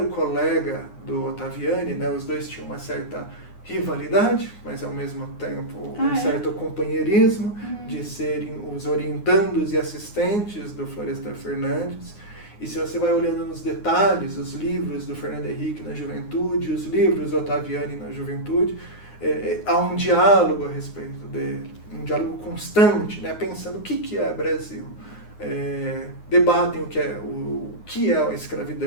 o colega do Ottaviani, né? Os dois tinham uma certa rivalidade, mas ao mesmo tempo certo companheirismo de serem os orientandos e assistentes do Florestan Fernandes. E se você vai olhando nos detalhes, os livros do Fernando Henrique na juventude, os livros do Ottaviani na juventude, há um diálogo a respeito dele, um diálogo constante, né? Pensando o que é Brasil. Debatem o que é a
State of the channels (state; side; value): late; right; 9.6 ms